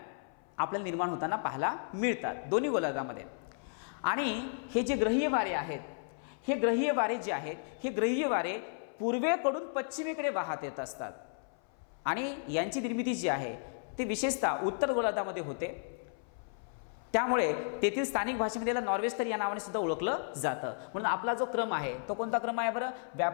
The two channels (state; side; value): silent; right; 55 dB below the other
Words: आपल्याला निर्माण होताना पाहायला मिळतात दोन्ही गोलार्धामध्ये. आणि हे जे ग्रहीय वारे आहेत हे ग्रहीय वारे जे आहेत हे ग्रहीय वारे पूर्वेकडून पश्चिमेकडे वाहत येत असतात आणि यांची निर्मिती जी आहे ती विशेषतः उत्तर गोलार्धामध्ये होते. त्यामुळे तेथील स्थानिक भाषेमध्ये याला नॉर्वेस्टर या नावाने सुद्धा ओळखलं जातं. म्हणून आपला जो क्रम आहे तो कोणता क्रम आहे बरं?